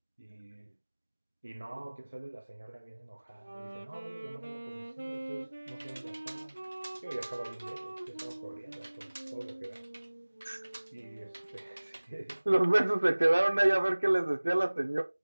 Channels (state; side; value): inverted; both; correlation -1.00